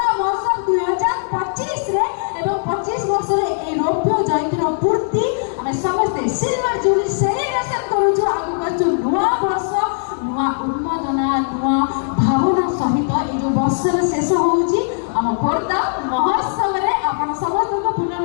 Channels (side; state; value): right; silent; 67 dB below the other